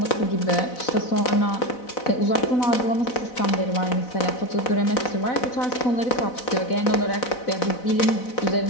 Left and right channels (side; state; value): right; late; 4.0 ms